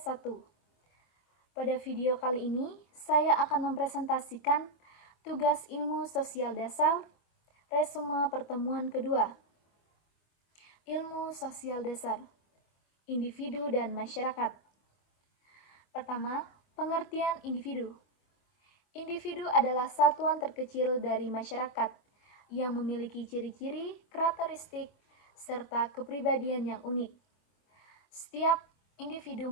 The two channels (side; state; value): right; late; 25 ms